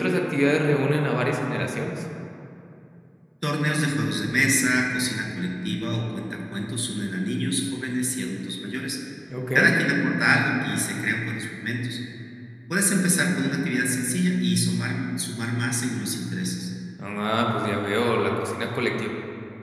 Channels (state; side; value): identical; both; correlation 1.00